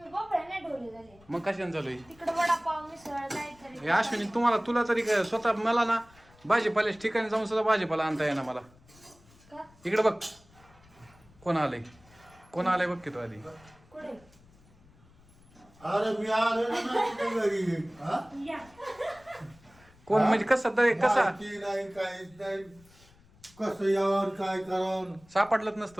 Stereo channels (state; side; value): noise; left; rumble, 27 dB below the sound